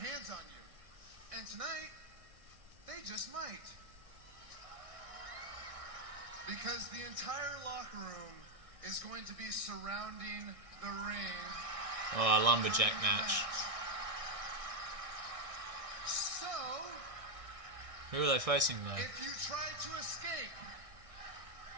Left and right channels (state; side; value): late; left; 1.6 ms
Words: on you. And tonight, they just might. Because the entire locker room is going to be surrounding the ring. Oh, a lumberjack match. So, who are they facing though? if you try to escape,